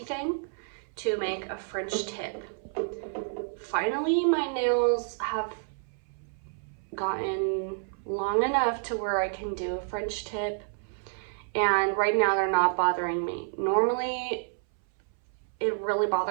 thing to make a French tip. Finally, my nails have gotten long enough to where I can do a French tip, and right now they're not bothering me. Normally, it really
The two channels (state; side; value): silent; left; 58 dB below the other